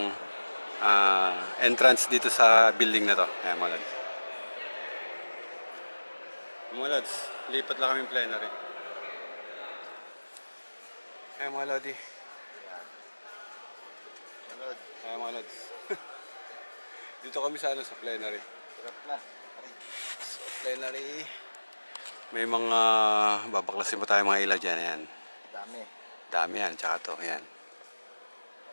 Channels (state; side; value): inverted; both; correlation -1.00